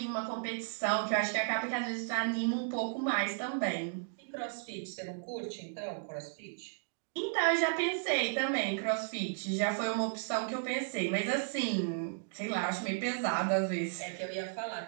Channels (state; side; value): silent; left; digital silence